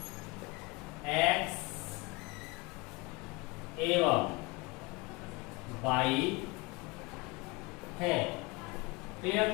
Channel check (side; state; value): right; quieter; 25.3 dB